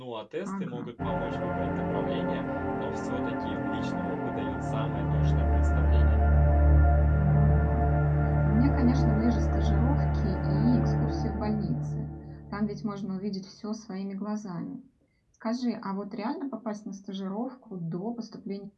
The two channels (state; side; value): identical; both; correlation 1.00